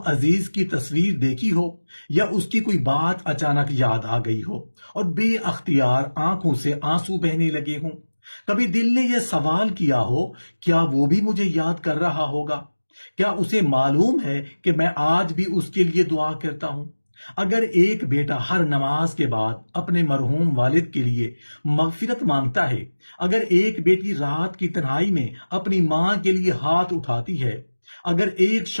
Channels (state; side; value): inverted; both; correlation -1.00